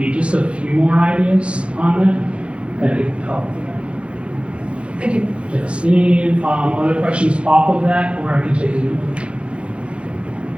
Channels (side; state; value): left; late; 0.059 ms